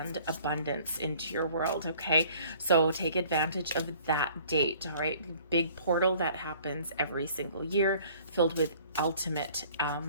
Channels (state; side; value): inverted; both; correlation -0.53